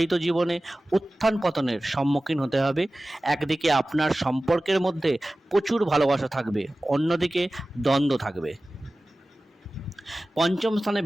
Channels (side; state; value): both; normal; correlation 0.96